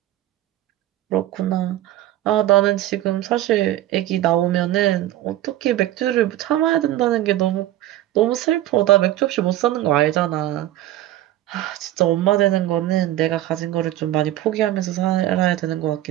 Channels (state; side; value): quieter; left; 14.1 dB